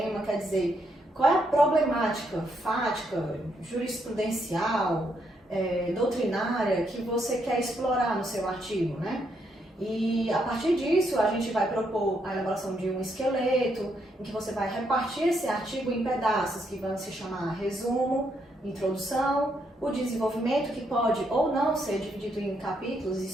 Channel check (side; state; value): both; normal; correlation 0.76